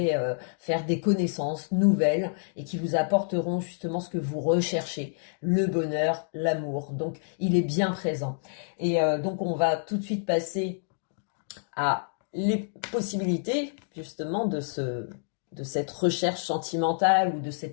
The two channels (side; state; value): right; silent; digital silence